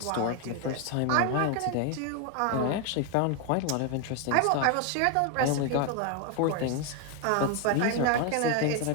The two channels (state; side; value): different; both; correlation 0.01